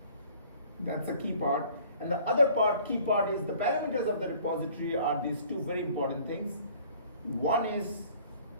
That's the key part. And the other key part is the parameters of the repository are these two very important things. One is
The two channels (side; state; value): both; inverted; correlation -0.53